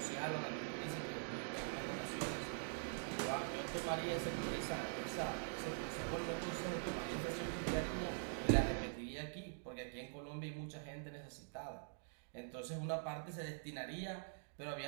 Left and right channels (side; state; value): left; silent; digital silence